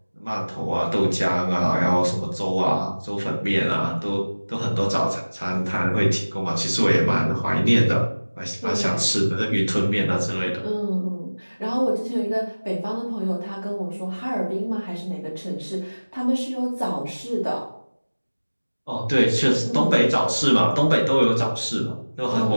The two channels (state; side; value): inverted; both; correlation -1.00